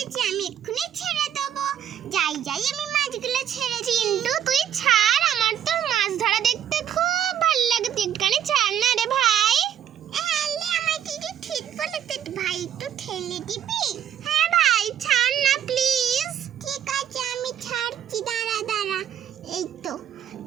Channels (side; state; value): left; quieter; 9.9 dB